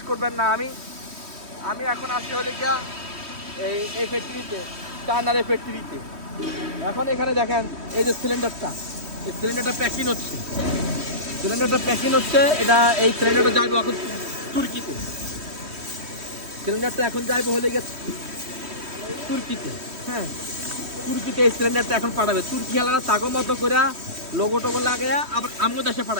করবেন না, আমি এখন আসি হলে গিয়া এই ফ্যাক্টরিতে, চায়নার এই ফ্যাক্টরিতে। এখন এখানে দেখেন এই যে সিলিন্ডারটা, এই সিলিন্ডারটা প্যাকিং হচ্ছে, এটা এই সিলিন্ডারটা যাইবে এখন তুর্কিতে। সিলিন্ডারটা এখন যাইবে হলে গেছে তুর্কিতে। হ্যাঁ, তুর্কিতে এই সিলিন্ডারটা এখন পাঠাবে। তুর্কি হালারা তাগো মতো করে লোগো টোগো লাগাইয়া আবার আমগো দেশে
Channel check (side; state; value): left; late; 3.1 ms